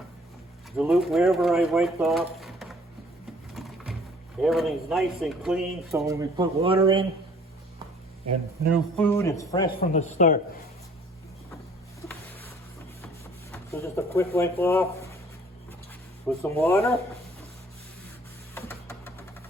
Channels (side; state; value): both; normal; correlation 0.55